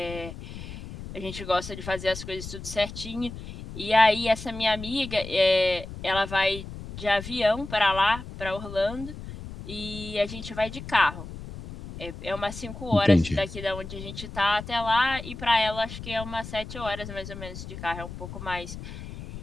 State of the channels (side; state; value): left; noise; rumble, 11 dB below the sound